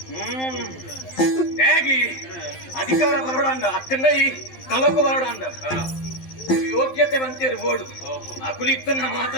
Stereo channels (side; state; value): right; late; 12 ms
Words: ಅಧಿಕಾರ ಬರೋಣ ಅಕ್ಕಂದ ಈ ಕಲಕು ಬರೋಣ ಯೋಗ್ಯತೆ ಬಂತೇರು ಬೋಡು ಅಕುಲಿತ್ತನ್ನ